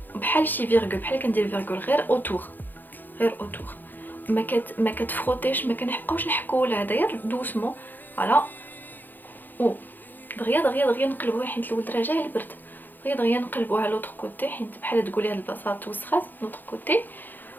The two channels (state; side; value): late; right; 0.088 ms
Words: بحال شي فيرغول، بحال كندير فيرغول غير اوتور، غير اوتور، ما كتفروتيش، ما كنبقاوش نحكوا ولا هذا، غير دوسمون فوالا. او دغيا دغيا دغيا نقلبوها حيت الولد راه جاي البرد، دغيا دغيا نقلبوها لوطخ كوتي حيت بحال تقولي هاد البلاصه توسخات لوطخ كوتي،